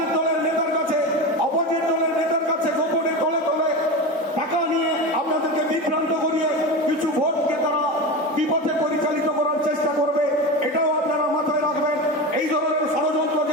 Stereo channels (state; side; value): normal; both; correlation 0.23